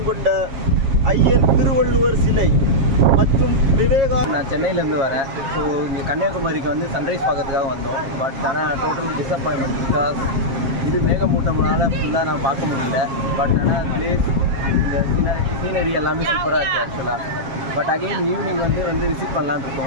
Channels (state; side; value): late; left; 7.4 ms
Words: கொண்ட ஐயன் திருவள்ளுவர் சிலை மற்றும் விவேகா. நான் சென்னையிலேருந்து வரேன். ஸோ இங்கே கன்னியாகுமரிக்கு வந்து சன்ரைஸ் பார்க்கறதுக்காக வந்தோம். பட் ஆனால் டோட்டல் டிசப்பாயின்மெண்ட். பிகாஸ் இது மேகமூட்டம்னால ஃபுல்லாக நான் பார்க்க முடியல. பட் ஆனால் பிளேஸ், இந்த சீனரி எல்லாமே சூப்பராக இருக்குது ஆக்சுவலாக. பட் அகெயின் ஈவினிங் வந்து விசிட் பண்ணலான்னு